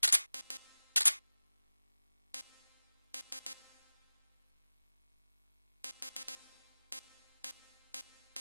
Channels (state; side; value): inverted; both; correlation -1.00